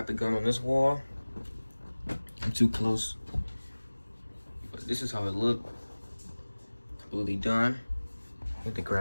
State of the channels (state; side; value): inverted; both; correlation -1.00